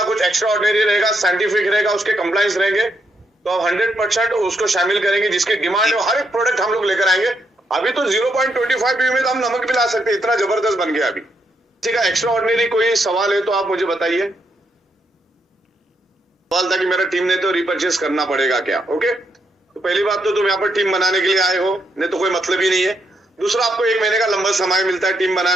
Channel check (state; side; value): normal; both; correlation 0.79